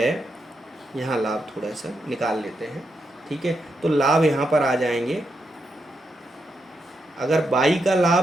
यहाँ लाभ थोड़ा सा निकाल लेते हैं। ठीक है, तो लाभ यहाँ पर आ जाएंगे। अगर बाई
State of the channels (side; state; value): both; normal; correlation 0.83